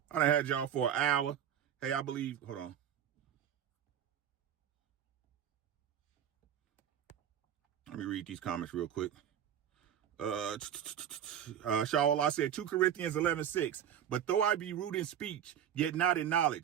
I done had y'all for an hour. Hey, I believe, hold on. Let me read these comments real quick. Shawallah said 2 Corinthians 11:6. But though I be rude in speech, yet not in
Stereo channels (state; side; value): quieter; left; 9.6 dB